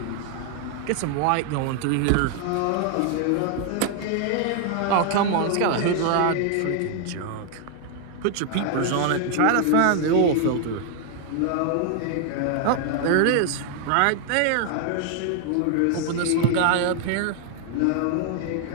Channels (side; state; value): both; different; correlation 0.00